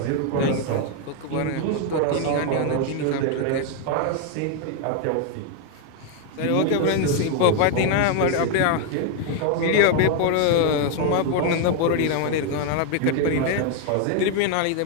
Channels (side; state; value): both; different; correlation 0.01